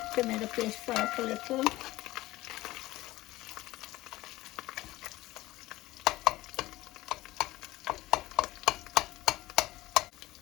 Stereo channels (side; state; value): right; quieter; 17.8 dB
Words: tomato paste fry up a little.